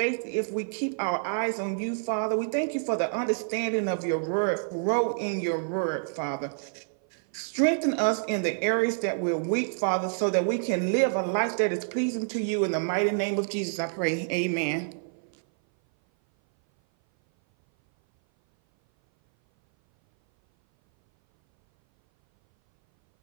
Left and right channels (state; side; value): silent; left; 57 dB below the other